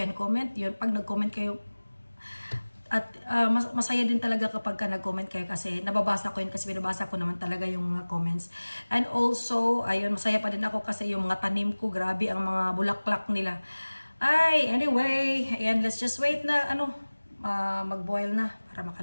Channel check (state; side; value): inverted; both; correlation -1.00